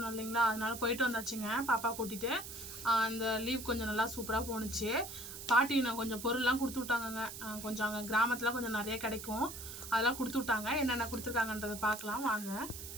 இல்லைங்களா, அதனால போயிட்டு வந்தாச்சுங்க பாப்பா கூட்டிகிட்டு. இந்த லீவ் கொஞ்சம் நல்லா சூப்பராக போணுச்சு. பாட்டி நான் கொஞ்சம் பொருள்லாம் கொடுத்து விட்டாங்கங்க. கொஞ்சம் அங்கே கிராமத்தில் கொஞ்சம் நிறைய கிடைக்கும், அதெல்லாம் கொடுத்து விட்டாங்க. என்னென்ன கொடுத்துருக்காங்கன்றதை பார்க்கலாம் வாங்க.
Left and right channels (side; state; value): right; noise; hiss, 10 dB below the sound